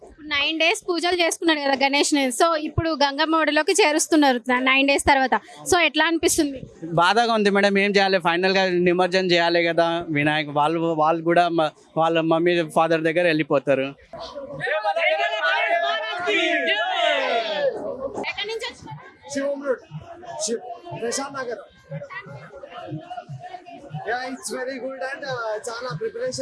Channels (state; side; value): identical; both; correlation 1.00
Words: 9 days పూజలు చేసుకున్నాడు కదా గణేష్ ని. సో ఇప్పుడు గంగమ్మ ఒడిలోకి చేరుస్తున్నారు 9 days తర్వాత. సో ఎట్లా అనిపిస్తుంది? బాధగా ఉంది మేడం. ఏం చేయాలి, ఫైనల్ గా నిమజ్జనం చేయాలి కదా వినాయక్. వాళ్ళు కూడా వాళ్ళ మమ్మీ ఫాదర్ దగ్గర వెళ్ళిపోతారు. ఎక్కడి నుంచి వచ్చినారు? Prashant Nagar. It's very good and చాలా